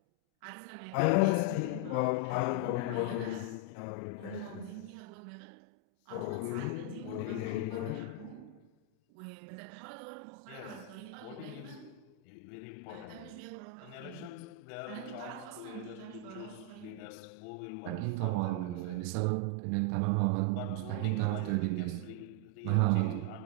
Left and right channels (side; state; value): both; different; correlation 0.00